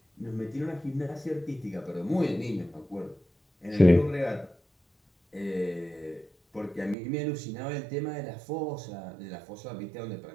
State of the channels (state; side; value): drops out; left; at 7.0 s